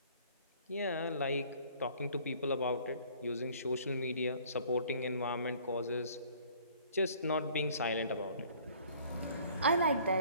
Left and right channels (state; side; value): inverted; both; correlation -0.55